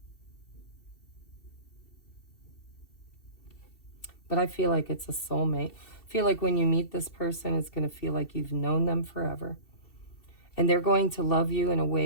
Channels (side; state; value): right; late; 2.7 ms